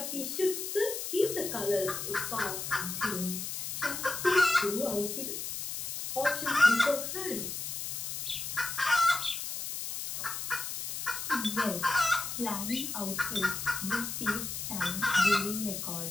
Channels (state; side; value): noise; left; hiss, 5 dB below the sound